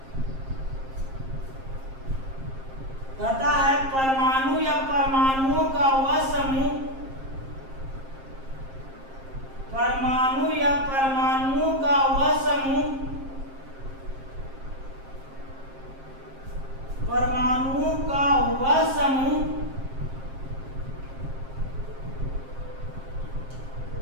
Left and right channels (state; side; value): late; left; 7.5 ms